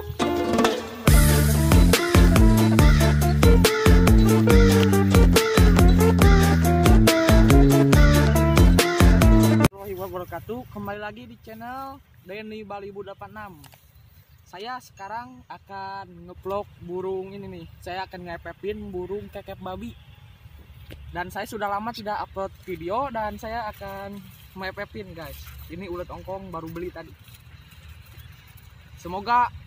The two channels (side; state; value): both; identical; correlation 1.00